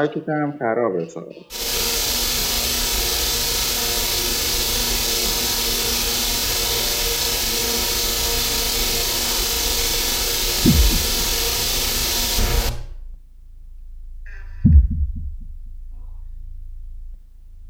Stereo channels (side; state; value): both; identical; correlation 1.00